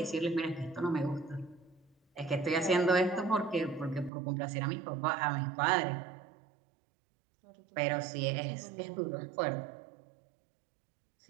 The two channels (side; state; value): left; drops out; at 4.1 s